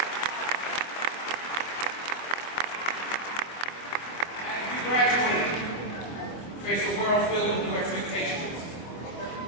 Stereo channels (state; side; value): late; right; 24 ms